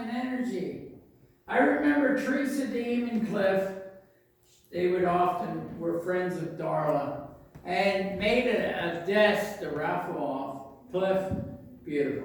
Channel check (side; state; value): both; identical; correlation 1.00